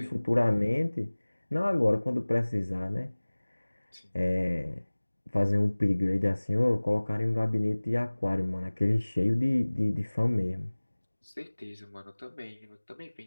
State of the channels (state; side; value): inverted; both; correlation -1.00